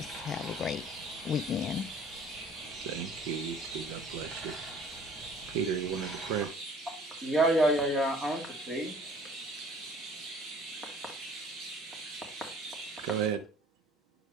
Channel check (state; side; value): normal; both; correlation 0.51